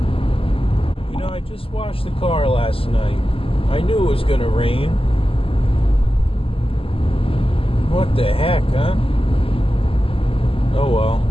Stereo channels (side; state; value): right; late; 0.26 ms